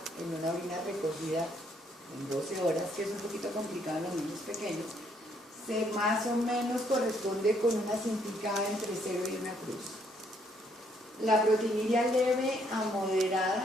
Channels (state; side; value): normal; both; correlation 0.69